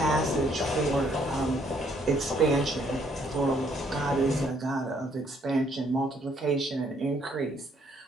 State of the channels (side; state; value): both; normal; correlation 0.67